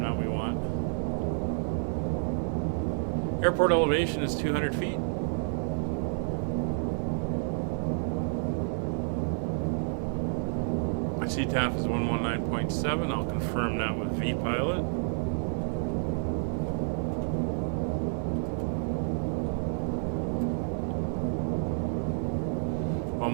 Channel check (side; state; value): left; silent; 57 dB below the other